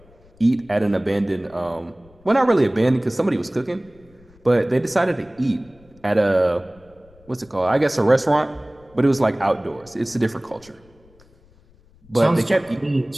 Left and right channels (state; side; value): noise; left; rumble, 28 dB below the sound